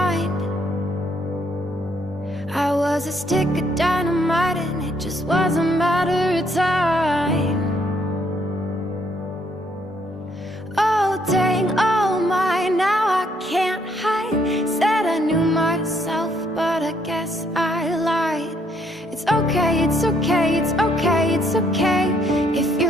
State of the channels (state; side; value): normal; both; correlation 0.70